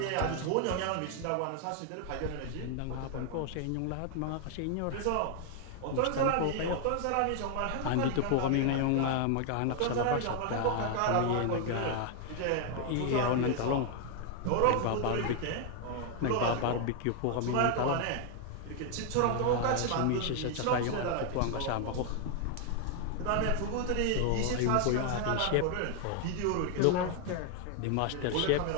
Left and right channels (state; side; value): different; both; correlation 0.00